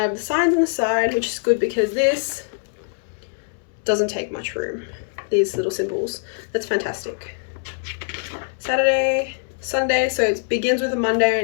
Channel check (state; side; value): silent; right; digital silence